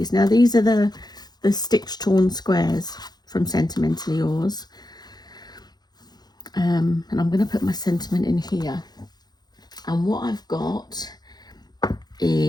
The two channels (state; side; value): late; right; 0.20 ms